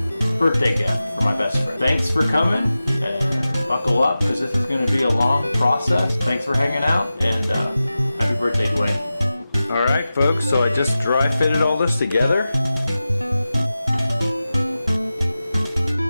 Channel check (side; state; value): both; inverted; correlation -0.94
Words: birthday gift for my best friend. Thanks for coming, and buckle up because this is going to be a long process. Thanks for hanging out, and happy birthday, Dwayne. All right, folks, so I just dry fitted all this together.